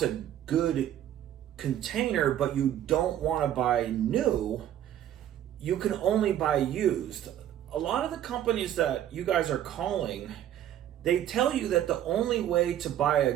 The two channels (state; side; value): quieter; left; 11.4 dB